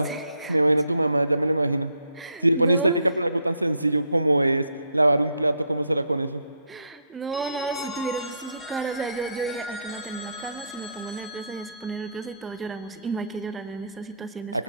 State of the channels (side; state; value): both; inverted; correlation -0.70